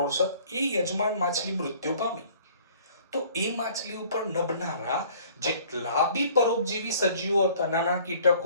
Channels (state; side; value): inverted; both; correlation -0.54